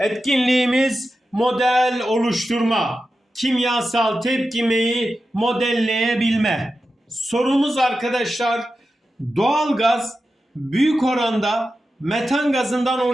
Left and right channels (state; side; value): normal; both; correlation 0.91